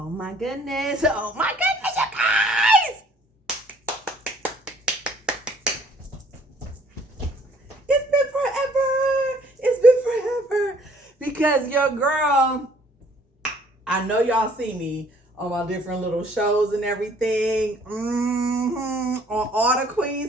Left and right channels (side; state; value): both; normal; correlation 0.59